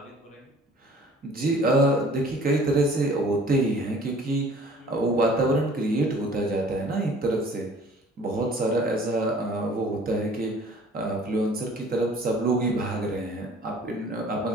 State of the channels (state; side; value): normal; both; correlation 0.51